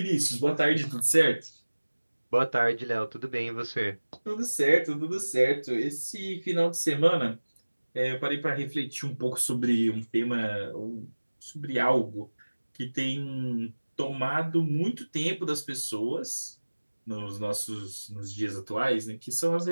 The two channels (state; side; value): inverted; both; correlation -1.00